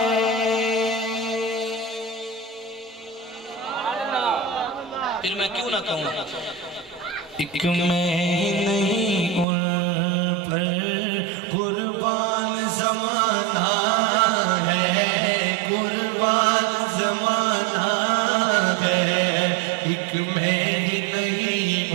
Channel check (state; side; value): drops out; left; at 9.5 s